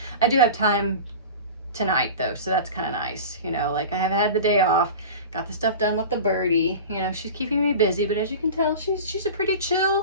I do have time tonight though, so that's kind of nice, you know, like I have had the day off, got the stuff done with the birdie, you know, she's keeping me busy, but as you can tell, she's a pretty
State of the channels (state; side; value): inverted; both; correlation -0.33